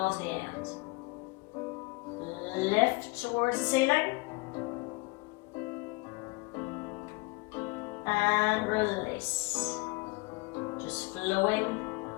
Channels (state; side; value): quieter; right; 26.1 dB